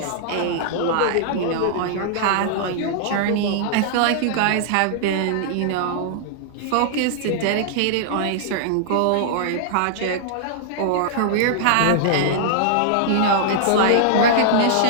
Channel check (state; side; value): different; both; correlation -0.01